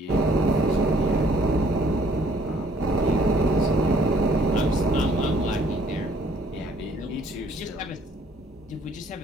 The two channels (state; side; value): normal; both; correlation 0.61